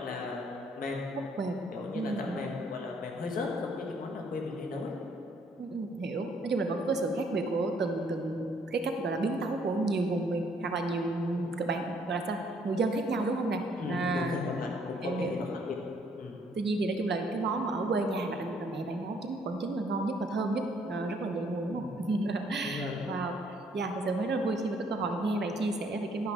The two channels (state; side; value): normal; both; correlation 0.66